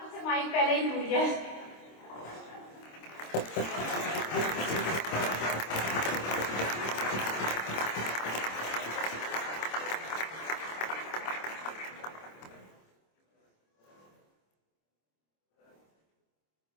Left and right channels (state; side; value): late; right; 26 ms